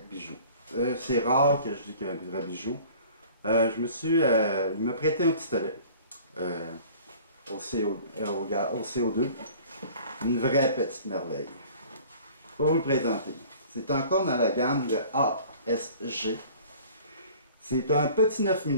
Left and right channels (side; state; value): both; inverted; correlation -0.48